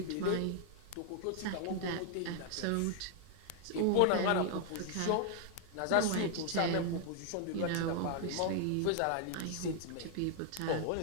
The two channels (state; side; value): different; both; correlation 0.00